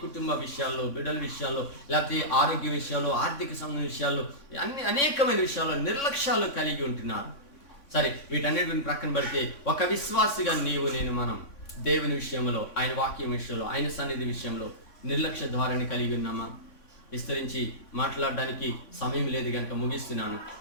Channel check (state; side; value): late; right; 3.6 ms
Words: కుటుంబ విషయాల్లో, బిడ్డల విషయాల్లో, లేకపోతే ఆరోగ్య విషయాల్లో, ఆర్థిక సంబంధ విషయాల్లో, అనేకమైన విషయాల్లో నిర్లక్ష్యాలు కలిగి ఉంటున్నారు. సరే, వీటన్నిటిని ప్రక్కన పెడితే ఒక విశ్వాసిగా మనం దేవుని విషయంలో, ఆయన వాక్యం విషయంలో, ఆయన సన్నిధి విషయంలో నిర్లక్ష్య ధోరణి కలిగి ఉన్నామా? విస్తరించి మాట్లాడడానికి సమయం లేదు కనుక ముగిస్తున్నాను.